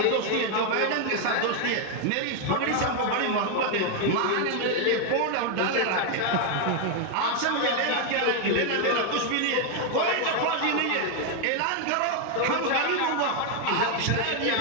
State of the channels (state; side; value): different; both; correlation 0.01